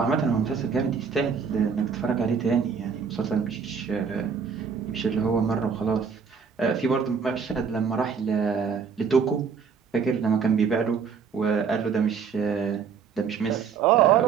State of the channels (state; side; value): quieter; left; 6.1 dB